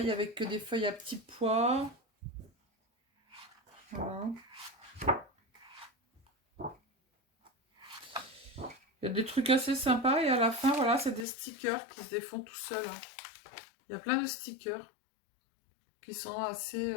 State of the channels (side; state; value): right; drops out; at 11.2 s